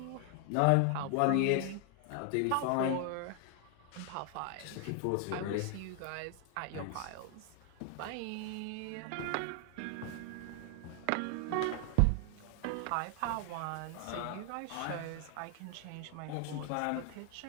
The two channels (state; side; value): different; both; correlation 0.00